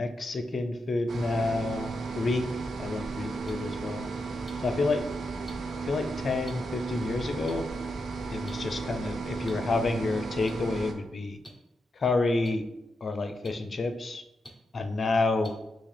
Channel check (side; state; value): both; normal; correlation 0.85